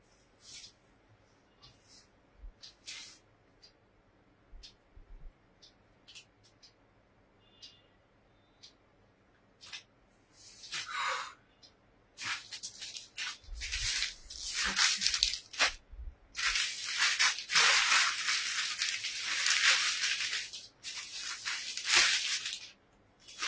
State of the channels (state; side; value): identical; both; correlation 1.00